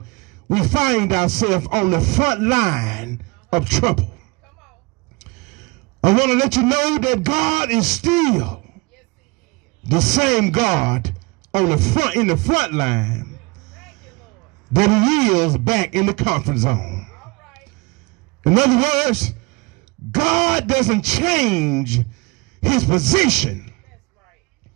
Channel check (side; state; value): left; quieter; 26.5 dB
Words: we find ourselves on the front line of trouble, Come on. I want to let you know that God is still Yes, He is. the same God on the front, in the front line, Thank you, Lord. that He is back in the comfort zone. All right. In other words, God doesn't change His position That's